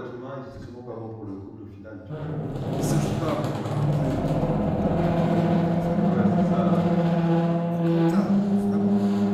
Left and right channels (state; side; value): identical; both; correlation 1.00